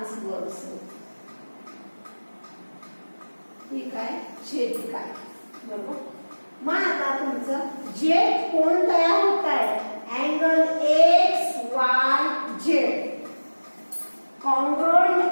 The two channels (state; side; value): inverted; both; correlation -1.00